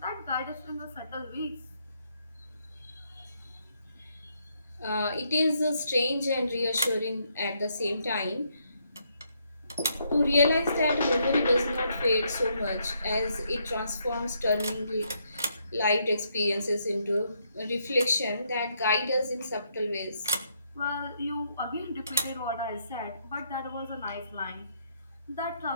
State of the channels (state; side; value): inverted; both; correlation -0.74